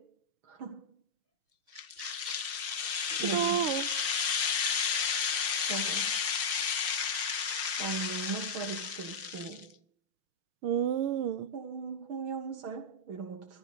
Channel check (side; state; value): left; late; 6.3 ms